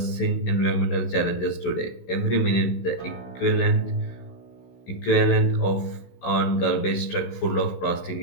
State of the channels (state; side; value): late; right; 16 ms